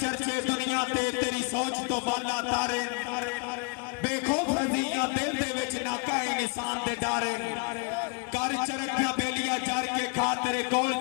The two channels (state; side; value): quieter; right; 33.5 dB